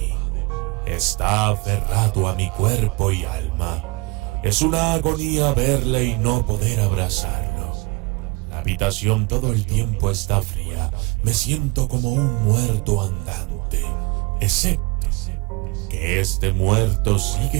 Está aferrado a mi cuerpo y alma. Es una agonía verle y no poder abrazarlo. La habitación todo el tiempo está fría. Me siento como un muerto andante, excepto que este muerto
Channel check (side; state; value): left; quieter; 26.9 dB